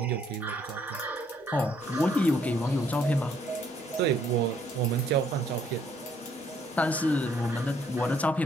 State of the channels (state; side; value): normal; both; correlation 0.67